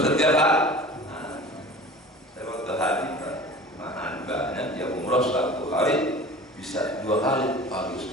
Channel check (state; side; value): normal; both; correlation 0.40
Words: setiap hari. Saya waktu haji mahan banyak yang umrah satu hari bisa 2 kali, pagi